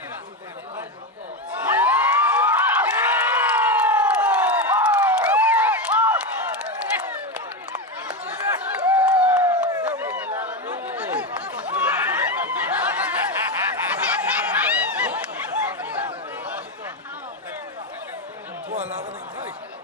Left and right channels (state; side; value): normal; both; correlation 0.13